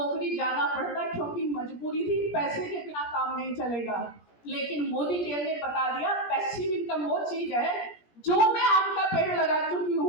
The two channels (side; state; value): right; late; 17 ms